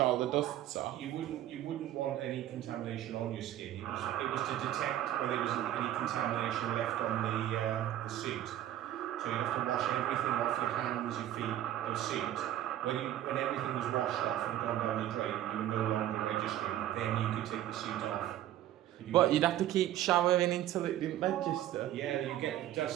the dusts off? You wouldn't want any contamination on your skin. It was to detect whether there was any contamination left on the suit. So you have to wash everything off your hands, your feet, your suit. When everything was washed off and gone down the drain, you were no longer registering. Then you could take the suit off. What, you'd have to keep showering until it didn't register? Yeah, you get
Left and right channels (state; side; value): quieter; left; 12.7 dB